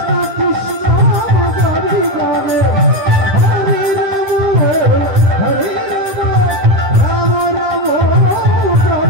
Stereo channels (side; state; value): left; late; 10 ms